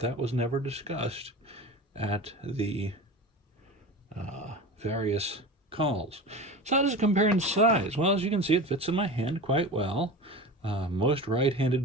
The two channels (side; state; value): both; normal; correlation 0.31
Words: was never discussed at the various calls. So how does it compare in size? Well, as you can see, it fits in my hand quite well. Most